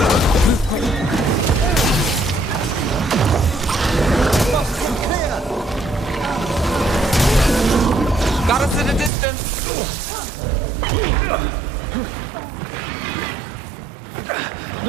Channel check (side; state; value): left; drops out; at 9.1 s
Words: Move quick. Got us at a distance.